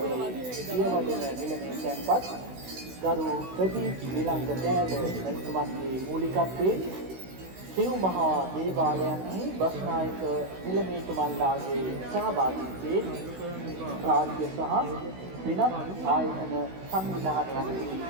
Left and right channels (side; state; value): left; late; 16 ms